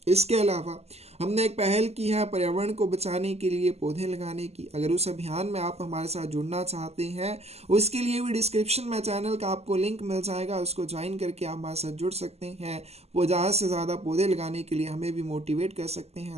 इसके अलावा हमने एक पहल की है पर्यावरण को बचाने के लिए पौधे लगाने की। अगर उस अभियान में आप हमारे साथ जुड़ना चाहते हैं, उसके लिए भी डिस्क्रिप्शन में चैनल का आपको लिंक मिल जाएगा, उसको ज्वाइन करके आप हमारे साथ जुड़ सकते हैं। वो ज़्यादा से ज़्यादा पौधे लगाने के लिए हमें भी मोटिवेट कर सकते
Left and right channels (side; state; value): left; late; 0.30 ms